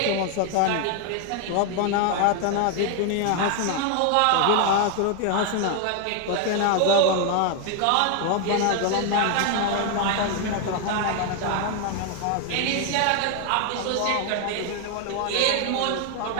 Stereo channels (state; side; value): different; both; correlation 0.00